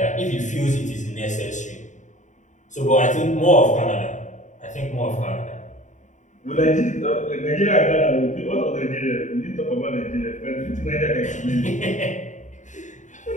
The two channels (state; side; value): late; right; 0.36 ms